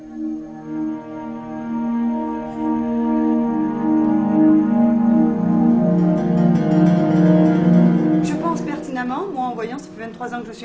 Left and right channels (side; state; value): both; identical; correlation 1.00